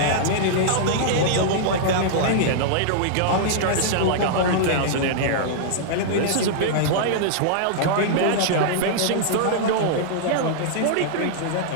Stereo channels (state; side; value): different; both; correlation -0.01